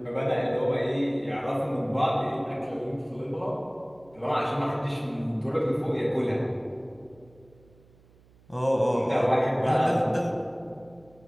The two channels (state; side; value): noise; right; hum, 28 dB below the sound